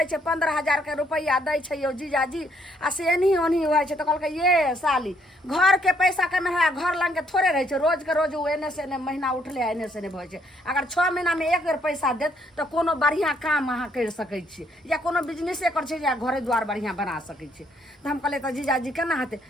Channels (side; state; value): both; normal; correlation 0.69